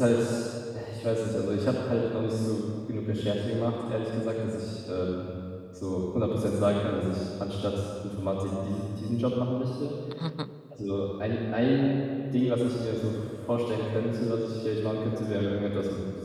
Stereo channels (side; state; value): both; identical; correlation 1.00